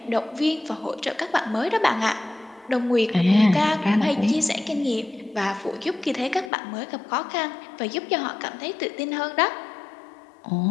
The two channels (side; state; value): right; drops out; at 6.5 s